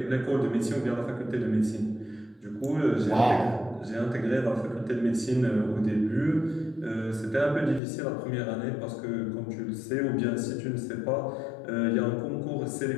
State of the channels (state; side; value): drops out; right; at 7.8 s